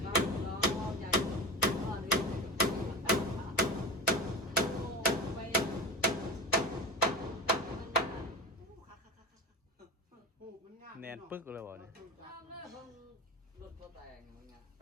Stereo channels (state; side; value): normal; both; correlation 0.26